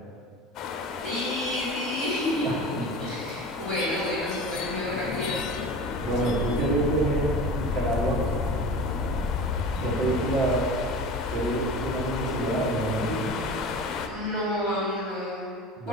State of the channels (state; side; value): normal; both; correlation 0.35